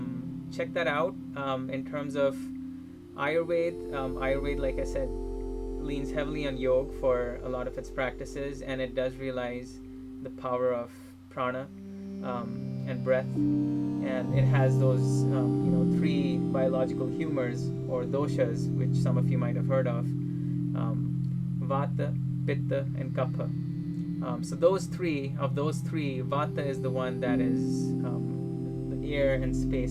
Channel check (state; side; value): identical; both; correlation 1.00